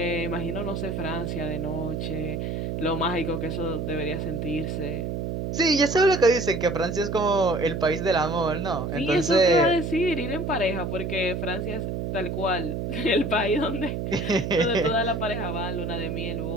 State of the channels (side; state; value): right; noise; hum, 3 dB below the sound